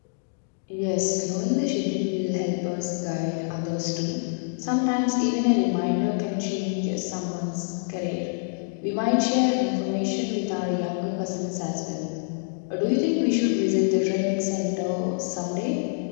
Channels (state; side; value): silent; right; digital silence